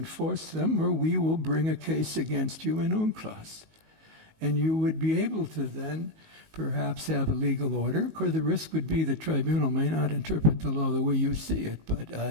them, or we will bring a case against you in UNCLOS. And you would be able to then perhaps have a legal order. Of course, the risk would be the tribunal may not interpret the law the way you see it, but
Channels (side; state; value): left; late; 19 ms